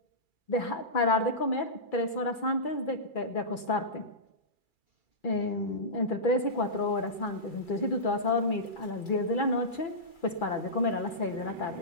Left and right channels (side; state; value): right; late; 2.3 ms